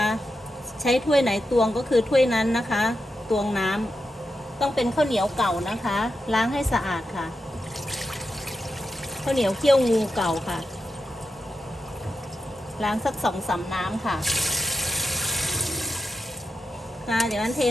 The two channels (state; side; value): normal; both; correlation 0.88